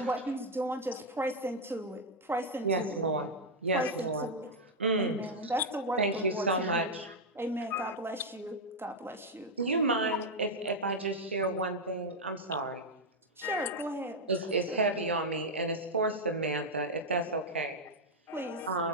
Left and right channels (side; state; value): both; normal; correlation -0.01